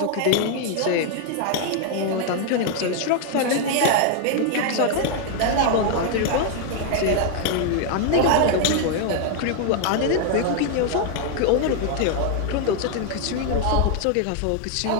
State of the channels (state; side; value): different; both; correlation 0.00